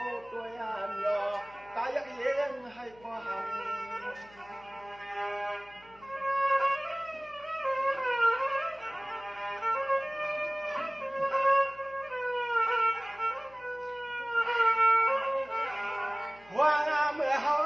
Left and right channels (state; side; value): noise; left; hum, 26 dB below the sound